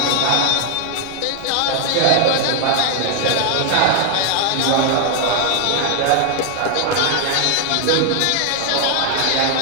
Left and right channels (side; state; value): both; different; correlation 0.00